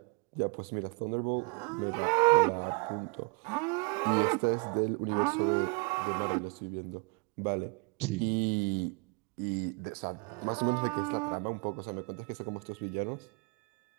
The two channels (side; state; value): left; quieter; 31.9 dB